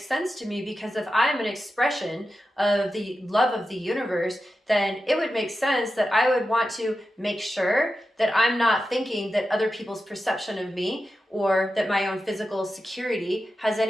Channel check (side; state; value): both; normal; correlation 0.91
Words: sense to me, because if I'm an expression of the love of the universe, then it would make sense that I would want to make sure that I'm not thinking that other people's perception of me, or that my own physical security has